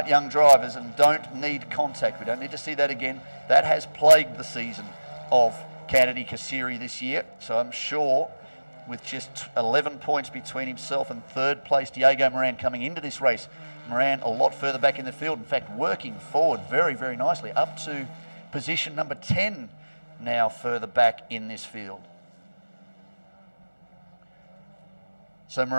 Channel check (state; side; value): inverted; both; correlation -1.00